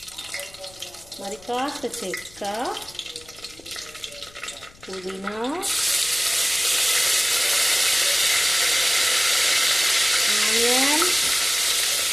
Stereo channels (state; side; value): noise; left; rumble, 25 dB below the sound